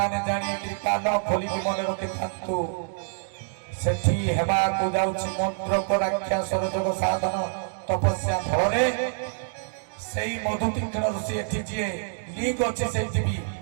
ଜାଣିକି କାନ ଖୋଲିକି ମନେ ରଖିଥାନ୍ତୁ ସେଠି ହେବାକୁ ଯାଉଛି ମନ୍ତ୍ରକ ରାକ୍ଷସର ଯୋଗ ସାଧନ ତପସ୍ୟା ଫଳରେ ସେଇ ମଧୁ ତୀକ୍ଷ୍ଣ ଋଷି ଏଠି ଯିଏ ଲିଙ୍କ୍ ଅଛି ସେଇଠି ବି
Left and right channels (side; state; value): left; silent; digital silence